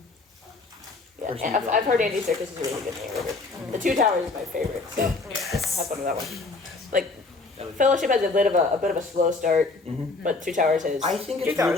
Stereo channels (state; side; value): quieter; right; 3.6 dB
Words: Yeah, Person and I've, who I've heard Andy Serkis is a really good narrator. The Two Towers is my favorite, so have fun with that one. Like, Fellowship has a bit of a slow start, but Two Towers is. I think Two it's Towers